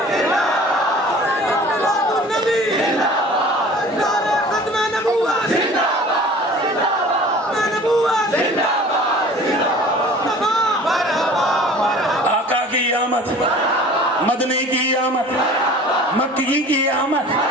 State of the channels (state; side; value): normal; both; correlation 0.45